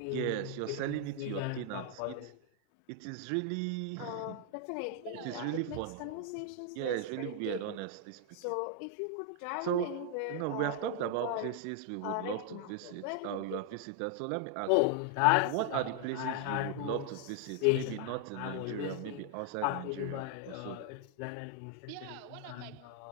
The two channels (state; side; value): different; both; correlation 0.00